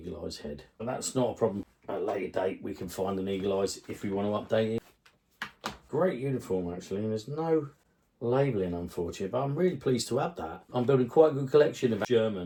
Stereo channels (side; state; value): both; identical; correlation 1.00